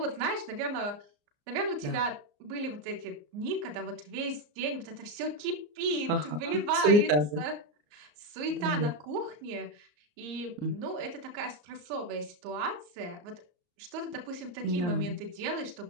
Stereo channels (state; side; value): late; left; 34 ms